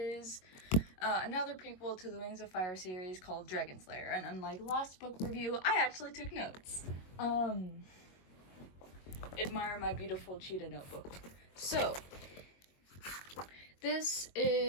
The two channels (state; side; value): late; right; 22 ms